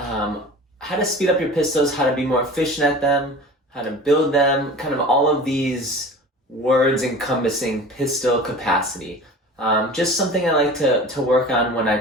how to speed up your pistols, how to be more efficient at them, how to build them, kind of all of these words encompassing pistol capacity. Just something I like to work on when I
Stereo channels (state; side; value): normal; both; correlation 0.38